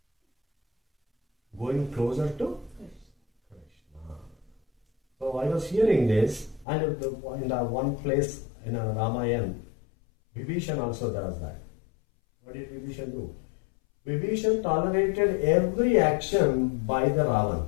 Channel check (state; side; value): drops out; right; at 6.7 s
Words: going closer to Krishna. So I was hearing this, and in the one place in Ramayana, Vibhishan also does that. What did Vibhishan do? Vibhishan tolerated every action by the Ravan,